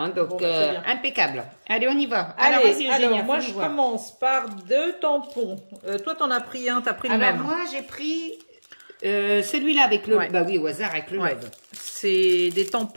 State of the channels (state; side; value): inverted; both; correlation -1.00